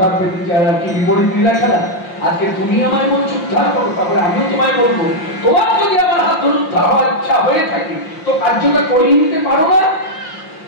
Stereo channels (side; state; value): right; late; 5.7 ms